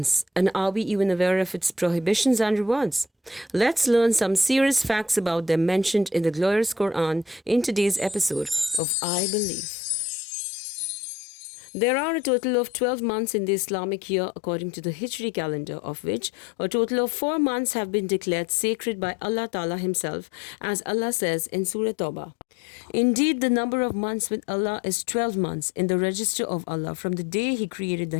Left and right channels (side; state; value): right; drops out; at 8.8 s